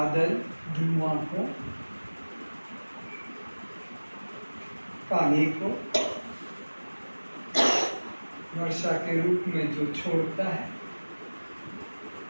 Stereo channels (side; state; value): both; inverted; correlation -1.00